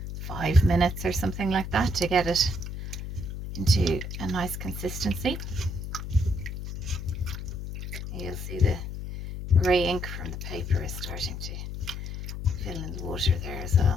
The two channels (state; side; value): noise; left; hum, 7 dB below the sound